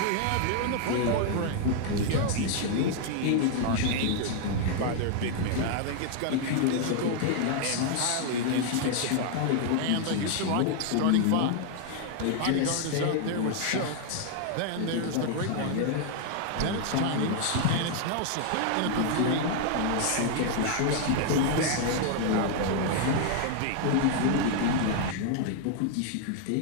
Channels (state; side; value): different; both; correlation 0.00